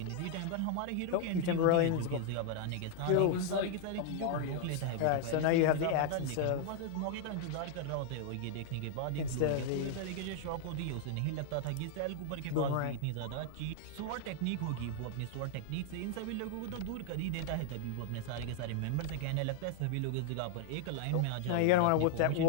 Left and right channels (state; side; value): different; both; correlation 0.00